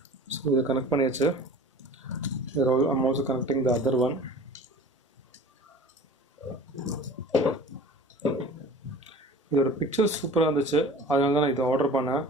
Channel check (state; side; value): normal; both; correlation 0.41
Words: So இதை கனெக்ட் பண்ணியாச்சு. I'm also connecting the other one. இதோட பிக்சர் சூப்பராக இருந்துச்சு, அதனால தான் நான் இதை ஆர்டர் பண்ணேன்.